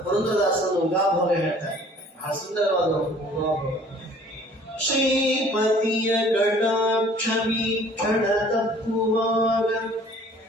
ಪುರಂದರದಾಸರು ಉಗಾಭೋಗ ಹೇಳ್ತಾರೆ, ಬಹಳ ಸುಂದರವಾದ ಉಗಾಭೋಗ. ಶ್ರೀಪತಿಯ ಕಟಾಕ್ಷ ವೀಕ್ಷಣ ತಪ್ಪುವಾಗ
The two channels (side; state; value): both; normal; correlation 0.53